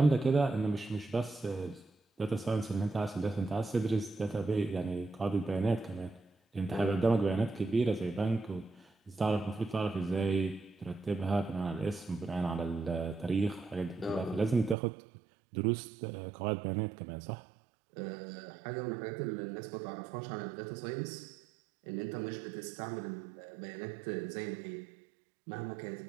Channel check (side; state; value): left; drops out; at 14.8 s